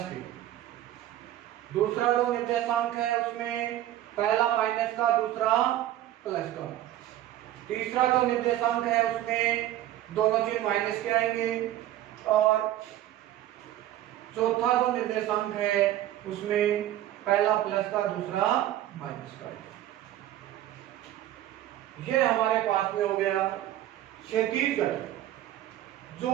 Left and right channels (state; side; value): quieter; left; 13.2 dB